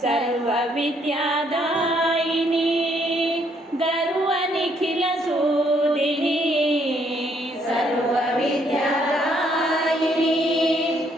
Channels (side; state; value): both; normal; correlation 0.69